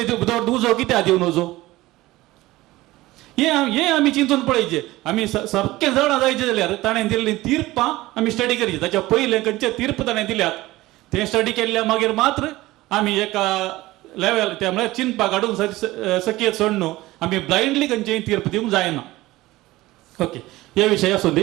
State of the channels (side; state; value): left; quieter; 18.2 dB